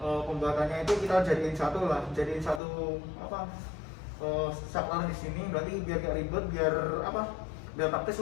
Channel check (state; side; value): drops out; right; at 2.6 s